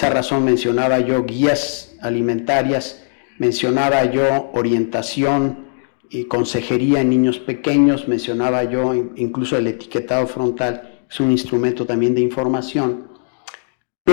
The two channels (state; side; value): silent; right; digital silence